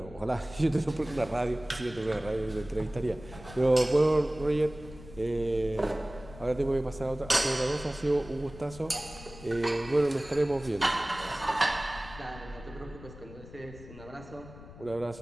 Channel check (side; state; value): left; noise; rumble, 17 dB below the sound